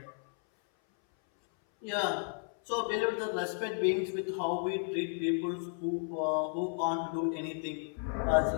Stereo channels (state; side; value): silent; right; 56 dB below the other